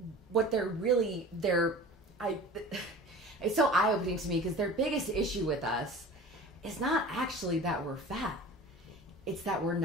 so eye-opening to me because their biggest issue with us is not actually that we're fat. It's that we're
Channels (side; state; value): both; normal; correlation 0.40